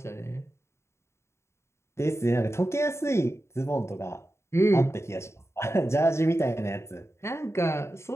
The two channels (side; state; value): right; late; 0.13 ms